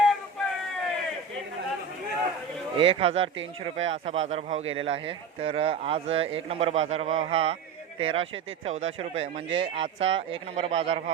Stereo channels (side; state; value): left; quieter; 5.7 dB